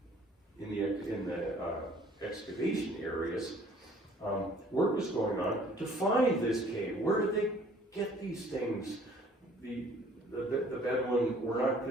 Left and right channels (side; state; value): both; normal; correlation 0.56